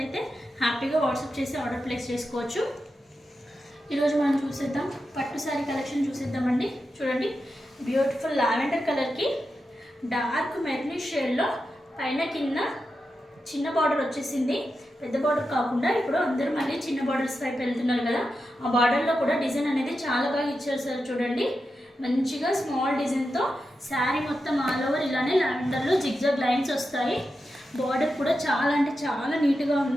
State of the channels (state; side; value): normal; both; correlation 0.89